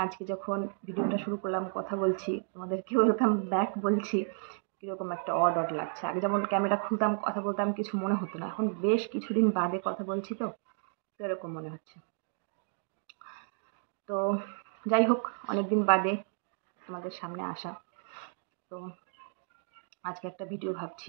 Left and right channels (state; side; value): silent; left; 56 dB below the other